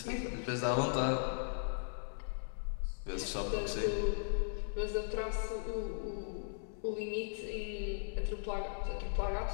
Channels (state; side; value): silent; right; digital silence